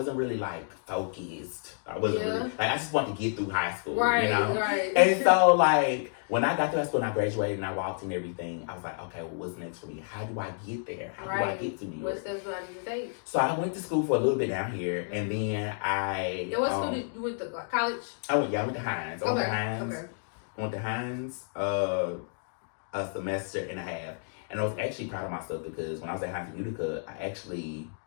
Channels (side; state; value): right; silent; digital silence